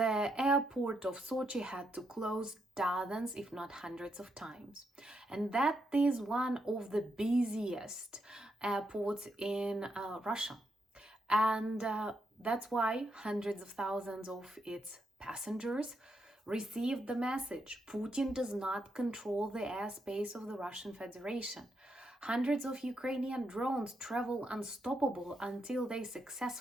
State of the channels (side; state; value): both; normal; correlation 0.80